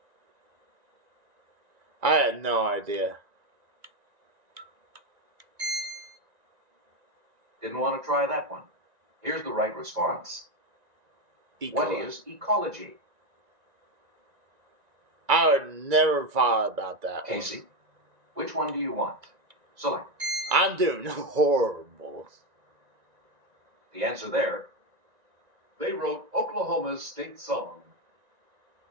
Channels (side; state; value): left; late; 1.9 ms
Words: I had no idea. Didn't want to try that one. Here's the right response. What is ecology? I would never thought about that. Casey, which one do you want? Select. I'm doing horrible. The answer there. They wrote Oklahoma's state song.